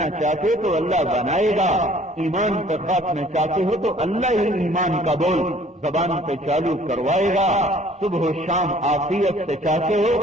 چاہتے ہو تو اللہ بنائے گا، ایمان پر خاتمہ چاہتے ہو تو اللہ ہی ایمان کا بول زبان پہ چالو کروائے گا، صبح و شام عافیت سے چاہتے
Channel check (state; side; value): normal; both; correlation 0.55